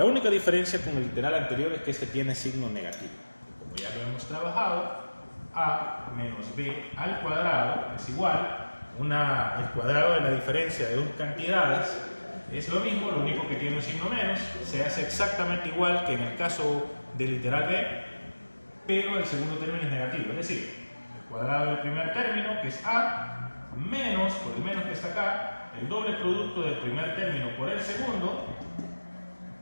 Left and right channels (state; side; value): inverted; both; correlation -1.00